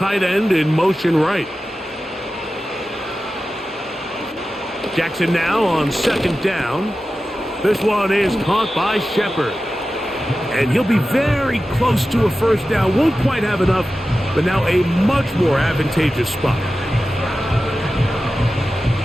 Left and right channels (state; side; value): normal; both; correlation 0.94